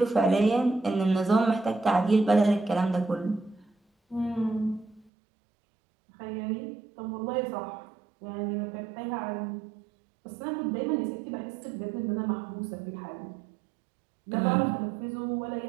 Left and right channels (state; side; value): drops out; left; at 5.1 s